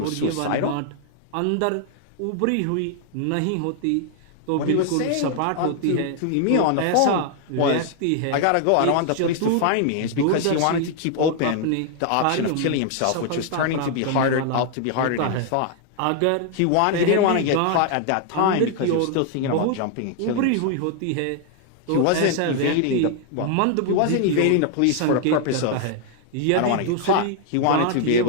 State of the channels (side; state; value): both; different; correlation 0.00